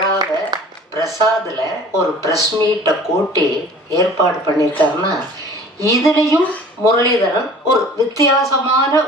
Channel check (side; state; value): both; normal; correlation 0.46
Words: பிரசாதில் ஒரு ப்ரெஸ் மீட்டை கூட்டி ஏற்பாடு பண்ணியிருக்காருன்னா, இதுலேயும் முரளிதரன் ஒரு வித்தியாசமான